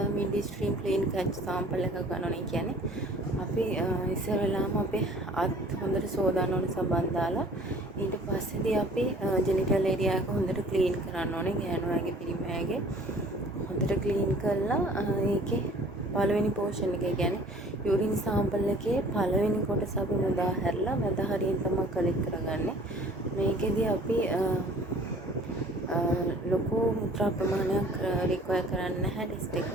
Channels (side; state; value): both; normal; correlation 0.50